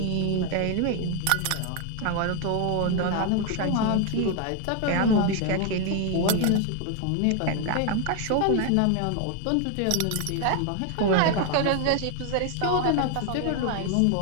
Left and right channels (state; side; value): different; both; correlation 0.01